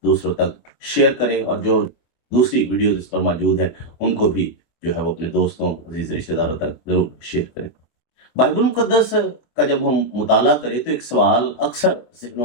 दूसरों तक शेयर करें और जो दूसरी वीडियो इस पर मौजूद है उनको भी जो है वो अपने दोस्तों, अजीज रिश्तेदारों तक जरूर शेयर करें। बाइबल मुकद्दस का जब हम मुताला करें तो एक सवाल अक्सर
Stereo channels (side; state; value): right; late; 24 ms